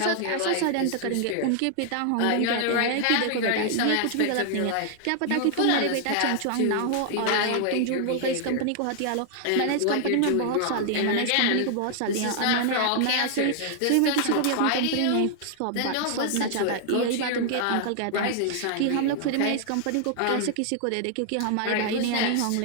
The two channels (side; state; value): both; different; correlation 0.00